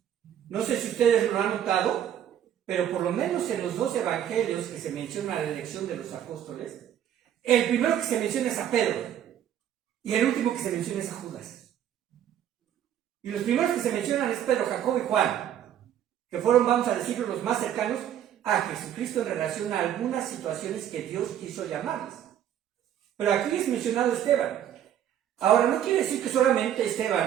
No sé si ustedes lo han notado, pero por lo menos en los 2 evangelios que se menciona la elección de los apóstoles, el primero que se menciona es a Pedro y el último que se menciona es a Judas. Y los primeros que se mencionan es Pedro, Jacobo y Juan, que fueron, vamos a decirlo, los más cercanos a Jesucristo en relación a algunas situaciones que Dios quiso llamarles. Pero aquí es mencionado Esteban. Ahora, no quiere decir que solamente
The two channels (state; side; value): quieter; left; 10.4 dB